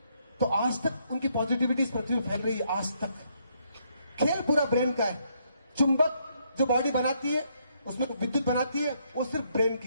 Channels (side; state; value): both; inverted; correlation -0.73